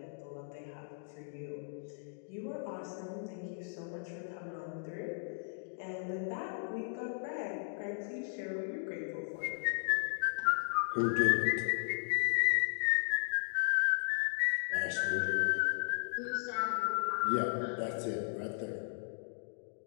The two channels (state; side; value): silent; right; digital silence